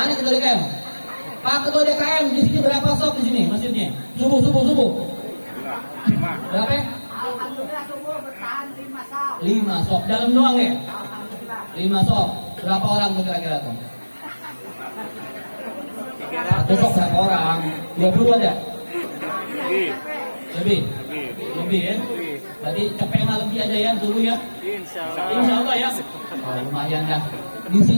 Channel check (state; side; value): inverted; both; correlation -1.00